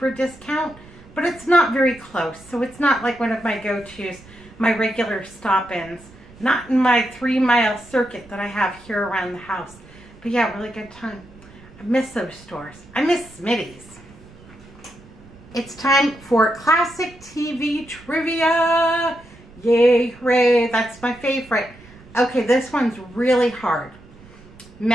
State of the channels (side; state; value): right; noise; rumble, 22 dB below the sound